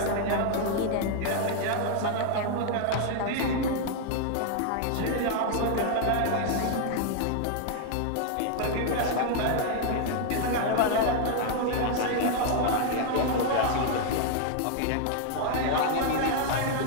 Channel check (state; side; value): different; both; correlation 0.00